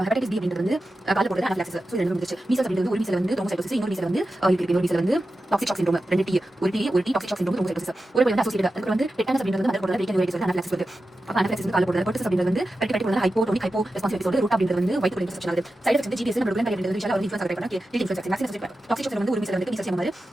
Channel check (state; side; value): normal; both; correlation 0.92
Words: ஹெப்படைட்டிஸ் B அப்படின்றது வந்து கால போடுறது அனாஃபிலாக்சிஸ். So ரெண்டு முடிச்சு மீசல்ஸ் அப்படின்றது ஒரு மீசல் வந்து த்ரோம்போசைட்டோசிஸ் இன்னொரு மீசல் வந்து இன்னொரு மீசல் வந்து டாக்ஸிக் ஷாக் சிண்ட்ரோம் ரெண்டு T ஒரு T toxic shock syndrome thrombocytosis ஒரு வந்து அசோசியேட்டட் அதுக்கு வந்து டெட்டானஸ் அப்படின்றது வந்து போடுறது ரீகன்வைட்டிஸ் வந்து அனாஃபிலாக்சிஸ் வருது. அப்ப அனாஃபிலாக்சிஸ் வந்து கால போடுறது பெர்டிசஸ் அப்படின்றது வந்து பெர்டிகேட்டிவ் வந்து ஹைப்போடோனிக் ஹைப்போ ரெஸ்பான்சிவ் சொல்றது ரூட் அப்படின்றது வந்து வயித்து இன்ஃபெக்ஷன் ஆகுது. சைடு எஃபெக்ட்ஸ் வந்து GDS நம்ம ப்ரோக்ராம் அப்படின்றது விஷயம் வந்து இன்ஃப்ளூயன்ஸ் ஆகுது பண்ணா இன்ஃப்ளூயன்ஸ் வேக்சின் டாக்ஸிக் ஷாக் வந்து ஒரு மீசல் வந்து மீசல் மாதிரி